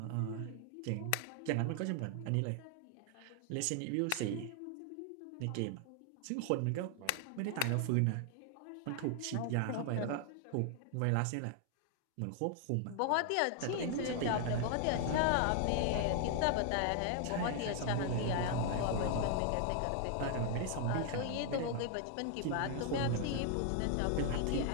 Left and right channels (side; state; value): both; different; correlation 0.00